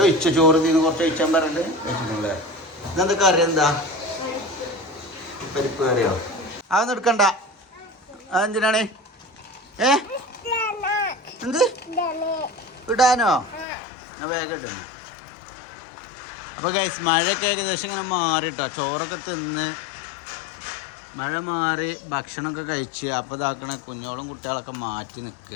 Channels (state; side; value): drops out; right; at 13.7 s